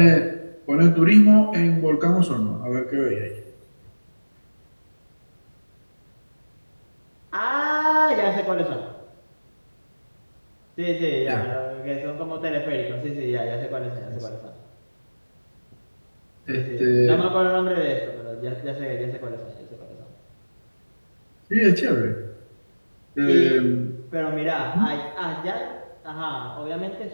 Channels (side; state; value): both; inverted; correlation -1.00